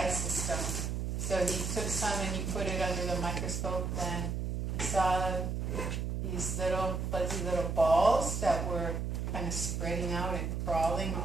system? So he took some and he put it under the microscope, and he saw these little fuzzy little balls that were kind of spreading out and crawling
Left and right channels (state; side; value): noise; right; hum, 2 dB below the sound